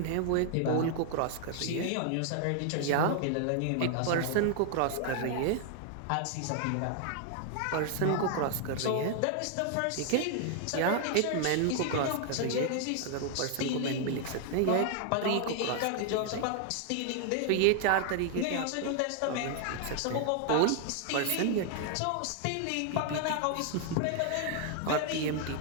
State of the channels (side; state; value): both; different; correlation 0.00